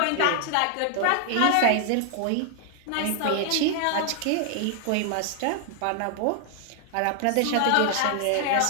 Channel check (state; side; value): different; both; correlation 0.00